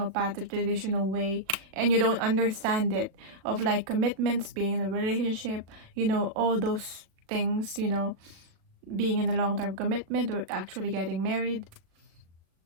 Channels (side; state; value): left; late; 36 ms